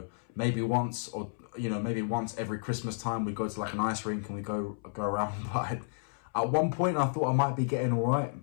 Maybe once, or maybe once every Christmas time we go to like an ice rink and we go around. But at one point I thought I might be getting all right,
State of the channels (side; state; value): right; silent; 57 dB below the other